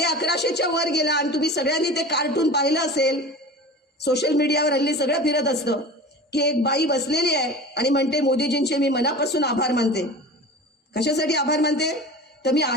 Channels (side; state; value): both; normal; correlation 0.35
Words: वर गेला. आणि तुम्ही सगळ्यांनी ते कार्टून पाहिलं असेल, सोशल मीडियावर हल्ली सगळं फिरत असतं की एक बाई बसलेली आहे आणि म्हणते मोदीजींचे मी मनापासून आभार मानते. कशासाठी आभार मानते? तर मी